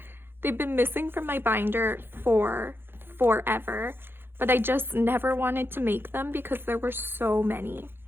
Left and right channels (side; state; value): left; late; 0.10 ms